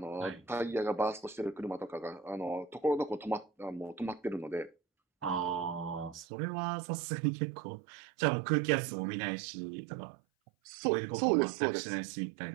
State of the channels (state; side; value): drops out; left; at 6.2 s